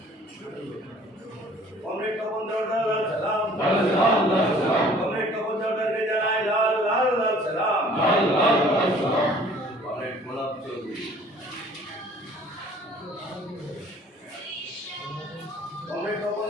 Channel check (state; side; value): normal; both; correlation 0.53